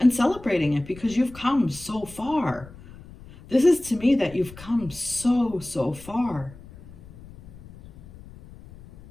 celebrating it, because you've come so far. This is to me that you've come so far.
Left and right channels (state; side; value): noise; left; rumble, 19 dB below the sound